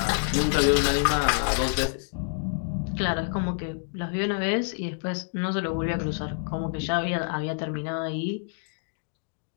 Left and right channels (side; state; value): right; silent; digital silence